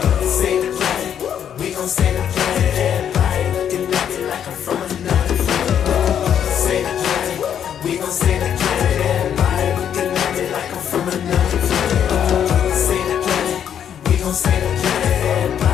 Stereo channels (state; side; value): quieter; right; 9.0 dB